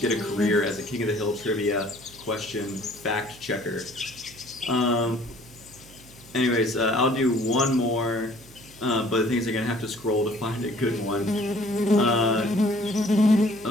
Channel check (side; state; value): right; noise; hum, 22 dB below the sound